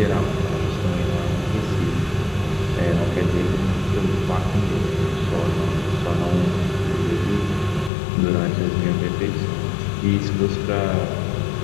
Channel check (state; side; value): drops out; right; at 7.9 s